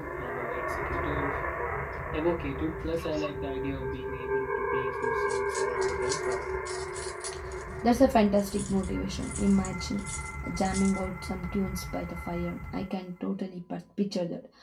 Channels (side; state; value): both; identical; correlation 1.00